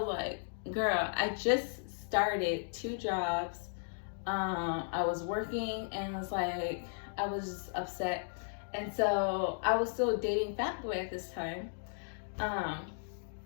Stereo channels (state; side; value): silent; right; digital silence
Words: like, girl, I just started 2 jobs. I was working, and it's like, I was just upset. And so I was still dating Fat Boy at this time.